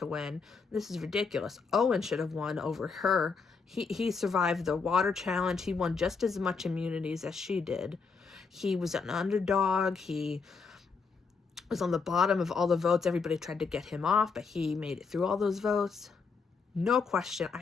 win. This is ridiculous. Owen should have won over her. He survived the water challenge. He won just as much immunities as she did. He was an underdog. He was on the bottom of all the votes. Everybody tried to get him off, but he made it through all those votes. No question.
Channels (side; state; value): right; quieter; 5.0 dB